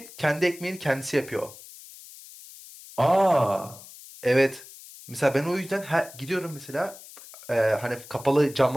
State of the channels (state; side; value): noise; left; hiss, 18 dB below the sound